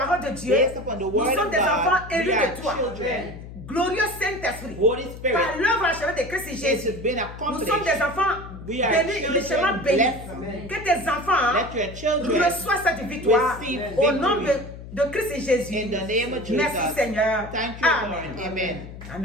de Dieu, Based upon the nous word sommes of des God, enfants élus we are de toi. children. Glorieux Saint-Esprit, Holy Spirit, par l'œuvre achevée de Christ it Jésus, has been nous accomplished. sommes des enfants We are bénis, children richement bénis. blessed. Que tes enfants Let your children reçoivent cette victoire receive au nom victory. de Christ Jésus. In the name of Jesus. Merci Seigneur. Thank you, Amen. Lord. Amen.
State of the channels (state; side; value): noise; left; hum, 13 dB below the sound